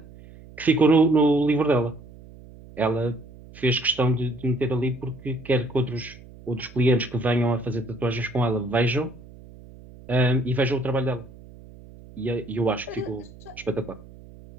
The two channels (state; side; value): noise; right; hum, 20 dB below the sound